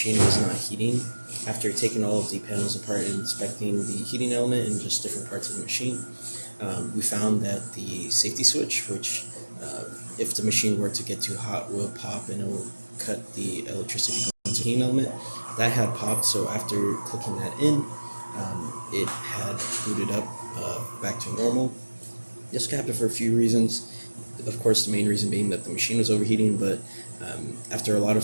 was not heating. After taking all of the panels apart and inspecting the heating element and just different parts of the machine, we found that the safety switch, which if the machine were to get too hot will pop and it will cut the electricity going to the heating element, that had popped. So after clicking that in, it had booted up back to normal. This could happen for a few reasons. Of course, the main reason being that the machine was overheating, but after a lot of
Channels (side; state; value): both; inverted; correlation -1.00